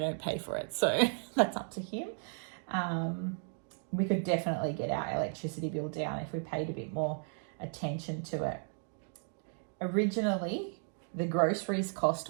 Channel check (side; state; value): left; silent; 55 dB below the other